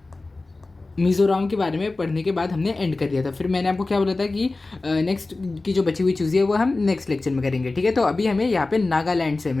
मिज़ोरम के बारे में पढ़ने के बाद हमने एंड कर दिया था। फिर मैंने आपको क्या बोला था कि नेक्स्ट की जो बची हुई चीज़ें है वो हम नेक्स्ट लेक्चर में करेंगे। ठीक है, तो अभी हमें यहाँ पे नागालैंड से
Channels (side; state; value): right; quieter; 3.3 dB